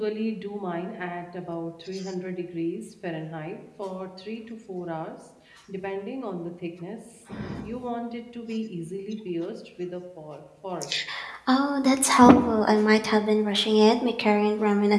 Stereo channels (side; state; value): both; identical; correlation 1.00